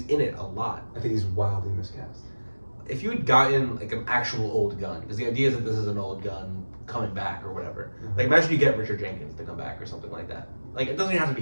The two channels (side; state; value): both; inverted; correlation -1.00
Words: in it a lot. I think he's wildly miscast. If you had gotten like an actual old gun, because the idea is that this is an old gun coming back or whatever. Mhm. Like imagine you get Richard Jenkins to come back or something like that. Like it doesn't even have to